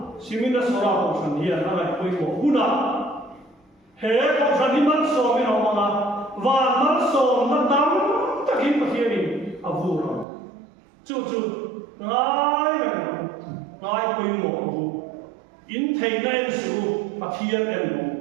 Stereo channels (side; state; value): left; drops out; at 10.2 s